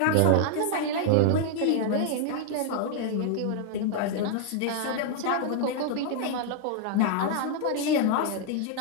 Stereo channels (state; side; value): different; both; correlation 0.00